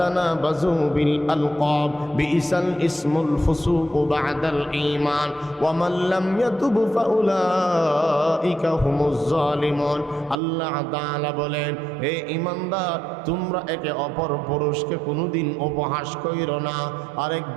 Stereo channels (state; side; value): drops out; left; at 10.4 s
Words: বিল আলকাব বিইসাল ইসমুল ফুসুক বা'দাল ঈমান ওয়া মান লাম ইয়াতুব ফাউলাইকা হুমুজ জালিমুন। আল্লাহ তাআলা বলেন হে ঈমানদার, তোমরা একে অপর পুরুষকে কোনোদিন উপহাস কইরো না,